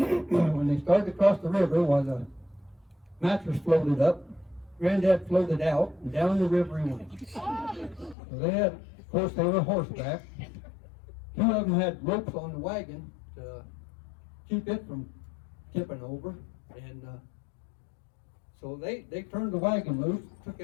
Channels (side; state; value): right; drops out; at 8.2 s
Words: when they started to cross the river, while the mattress floated up, Granddad floated out, and down the river he went. So they had, of course, they were horseback. Two of them had ropes on the wagon to keep it from tipping over. And so they turned the wagon loose, took